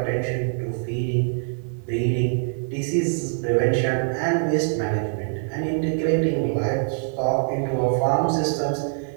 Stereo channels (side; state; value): left; silent; digital silence